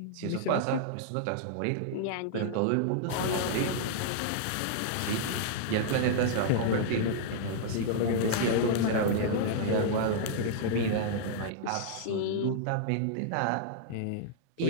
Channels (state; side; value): different; both; correlation -0.01